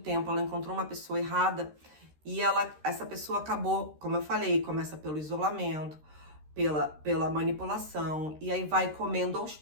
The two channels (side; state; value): left; late; 13 ms